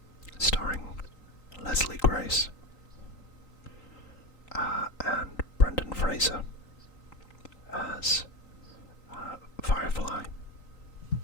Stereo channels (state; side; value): late; right; 3.9 ms